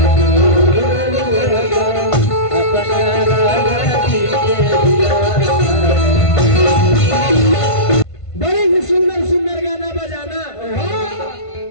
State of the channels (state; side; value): late; right; 1.5 ms